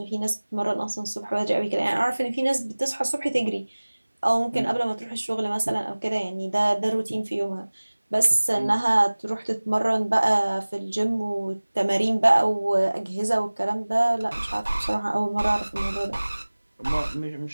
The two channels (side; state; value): both; inverted; correlation -1.00